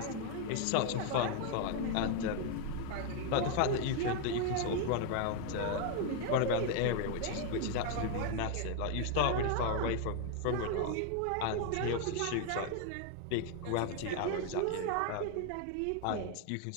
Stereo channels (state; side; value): different; both; correlation 0.00